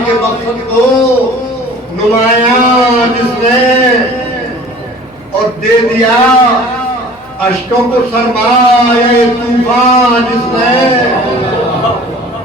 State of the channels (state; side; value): normal; both; correlation 0.46